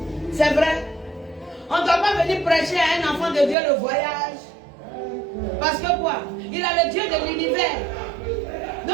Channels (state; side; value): drops out; left; at 3.6 s